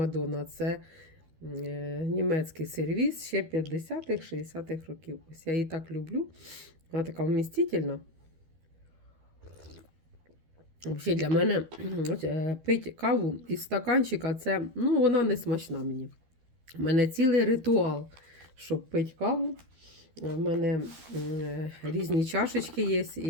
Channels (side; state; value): left; late; 13 ms